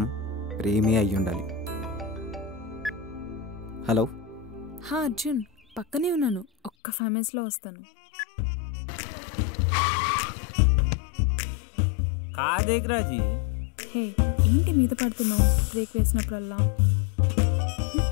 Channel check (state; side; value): drops out; right; at 6.7 s